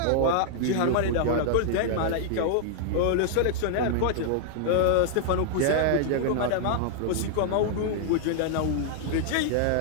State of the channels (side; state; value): both; different; correlation -0.01